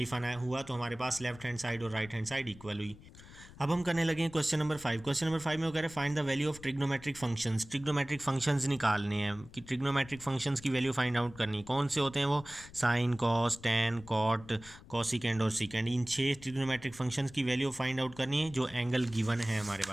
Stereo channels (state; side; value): noise; left; rumble, 19 dB below the sound